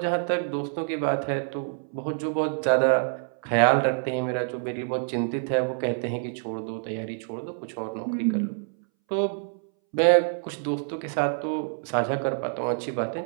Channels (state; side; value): silent; left; 60 dB below the other